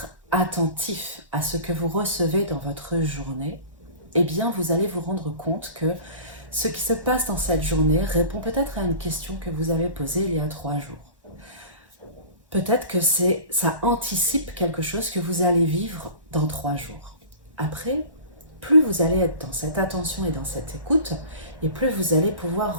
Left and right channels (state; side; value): late; left; 1.1 ms